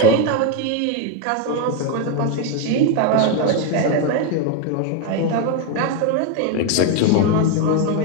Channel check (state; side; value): different; both; correlation 0.01